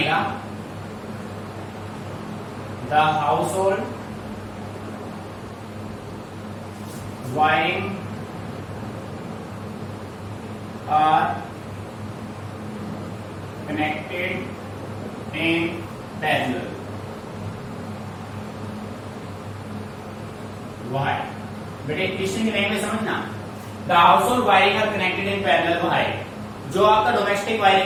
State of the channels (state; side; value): identical; both; correlation 1.00